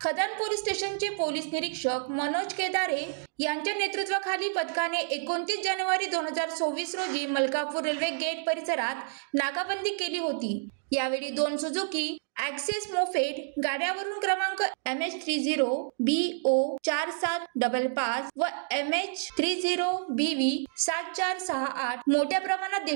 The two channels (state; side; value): silent; left; digital silence